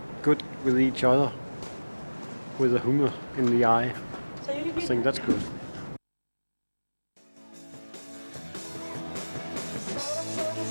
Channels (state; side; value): inverted; both; correlation -1.00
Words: good with each other with the humor in the eye. I think that's good.